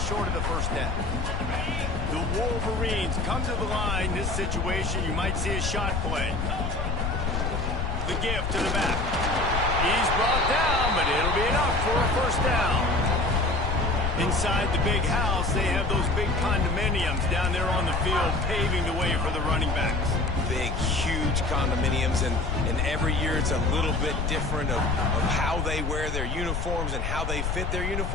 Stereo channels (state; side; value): noise; left; rumble, 1 dB below the sound